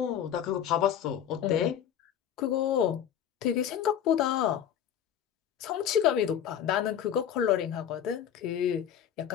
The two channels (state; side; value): quieter; right; 9.5 dB